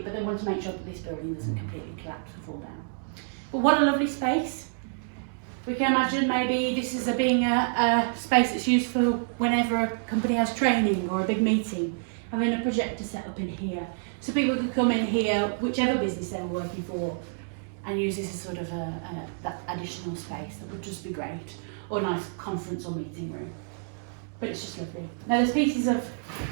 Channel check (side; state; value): left; silent; digital silence